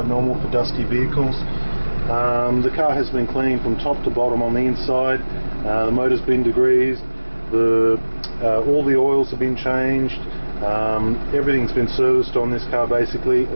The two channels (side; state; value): both; inverted; correlation -1.00